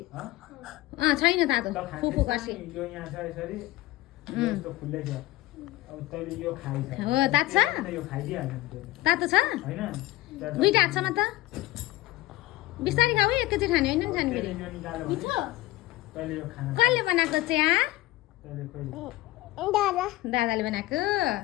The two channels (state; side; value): quieter; right; 17.3 dB